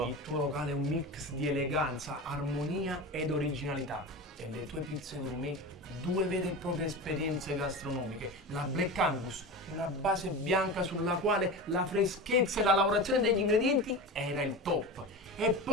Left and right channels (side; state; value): both; normal; correlation 0.27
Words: Il tuo locale è un mix di eleganza, armonia ed originalità. E le tue pizze gourmet, due vere e proprie esperienze gastronomiche. La Black Angus, una base bianca sulla quale la freschezza e la lavorazione degli ingredienti era il top. E